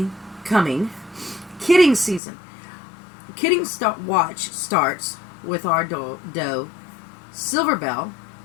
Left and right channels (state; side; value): drops out; right; at 2.2 s